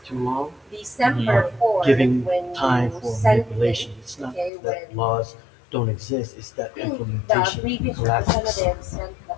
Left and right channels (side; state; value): right; drops out; at 4.5 s